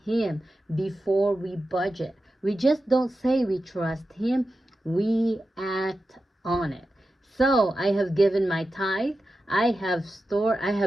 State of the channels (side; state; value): both; normal; correlation 0.92